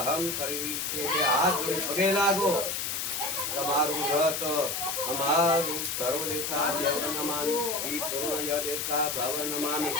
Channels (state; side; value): noise; left; hiss, 2 dB below the sound